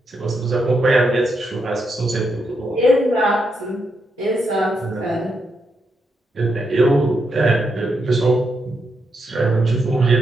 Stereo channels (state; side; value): normal; both; correlation 0.82